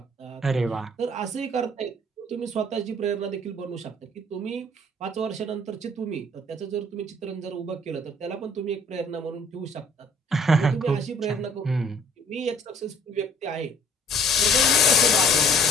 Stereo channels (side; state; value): both; normal; correlation 0.56